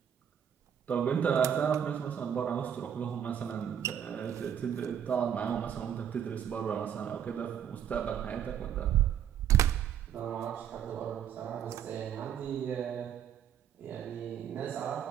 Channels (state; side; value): quieter; left; 9.1 dB